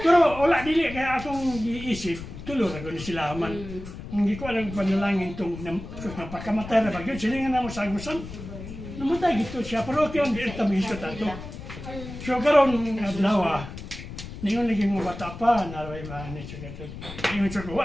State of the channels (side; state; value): left; noise; rumble, 11 dB below the sound